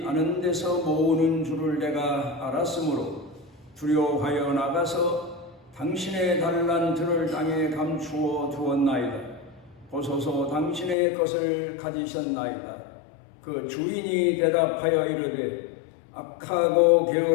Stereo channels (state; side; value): drops out; right; at 11.0 s